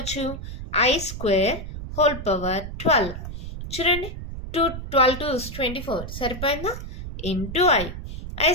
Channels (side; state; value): right; noise; rumble, 8 dB below the sound